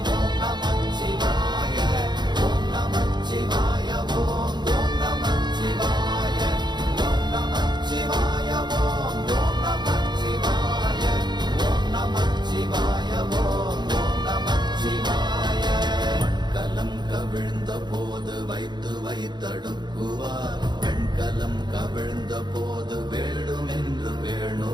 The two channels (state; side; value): late; left; 0.21 ms